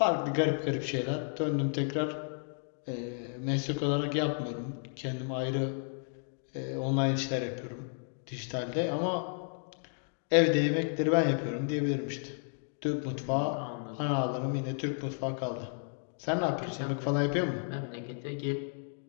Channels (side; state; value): right; silent; 56 dB below the other